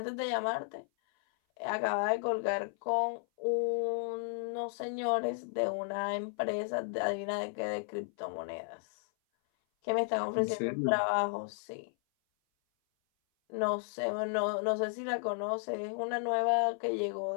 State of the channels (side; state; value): right; silent; 55 dB below the other